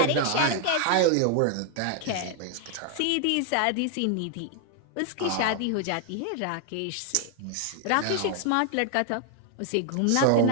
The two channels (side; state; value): both; different; correlation 0.00